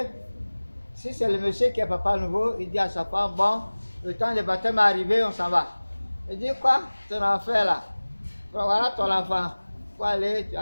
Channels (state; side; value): inverted; both; correlation -1.00